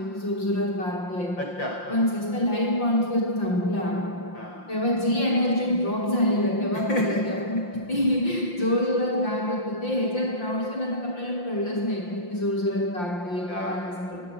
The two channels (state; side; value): late; right; 5.7 ms